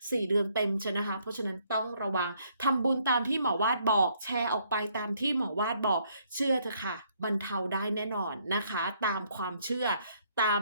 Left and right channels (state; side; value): inverted; both; correlation -0.68